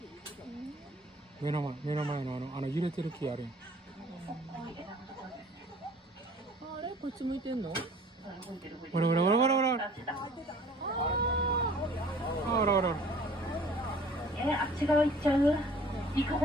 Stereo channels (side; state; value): both; normal; correlation 0.50